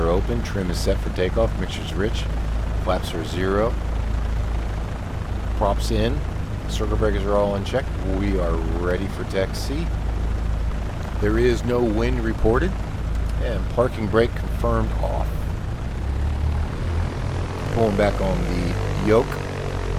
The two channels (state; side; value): identical; both; correlation 1.00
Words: open. Trim is set for takeoff. Mixture's rich. Flaps are 0. Props in. Circle breakers are all unchecked. We are ready for taxi. There is no wind reported. And parking brake confirmed off. Pulling back on the yoke.